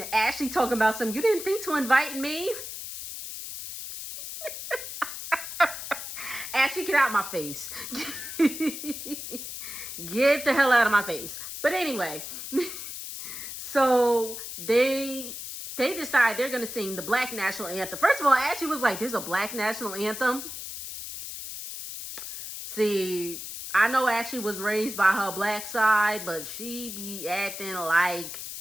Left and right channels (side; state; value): left; noise; hiss, 8 dB below the sound